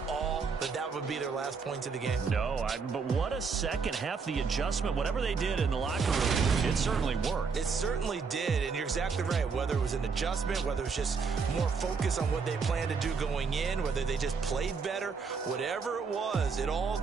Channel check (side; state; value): left; quieter; 5.3 dB